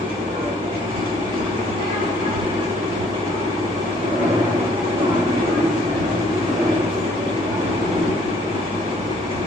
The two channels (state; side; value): normal; both; correlation 0.61